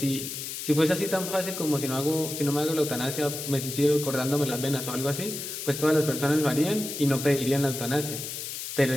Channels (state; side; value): noise; left; hiss, 7 dB below the sound